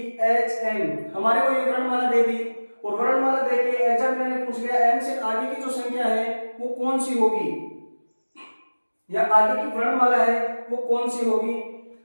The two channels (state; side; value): inverted; both; correlation -1.00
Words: H M, हमारे को ये वर्णमाला दे दी और वर्णमाला देके एग्जामिनर ने पूछ लिया M से आगे की जो संख्या है वो कौन सी होगी, या आगे की वर्णमाला है वो कौन सी होगी।